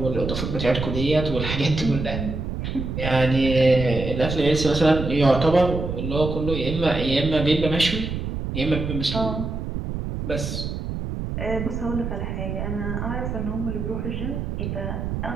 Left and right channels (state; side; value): noise; right; rumble, 4 dB below the sound